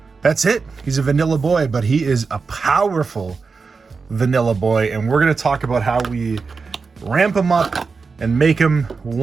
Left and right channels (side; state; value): left; quieter; 4.8 dB